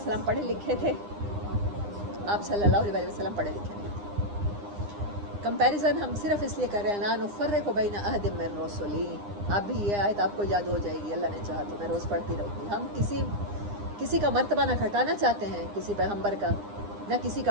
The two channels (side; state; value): left; late; 9.8 ms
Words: پڑھے لکھے تھے، آپ صلی اللہ علیہ وسلم پڑھے لکھے نہیں تھے۔ کمپیریزن ہم صرف اس لیے کر رہے ہیں لا نفرق بین احد من رسلی، آپ بھی یہ آیت آپ کو یاد ہو جائے گی، اللہ نے چاہا تو میں روز پڑھتی رہوں گی۔ ہم کسی کا مرتبہ نہ گھٹانا چاہتے ہیں، کسی پیغمبر کا، نہ کسی